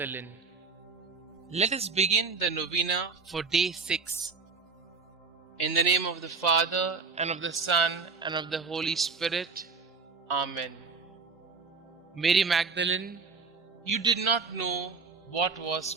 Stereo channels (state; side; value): quieter; left; 4.6 dB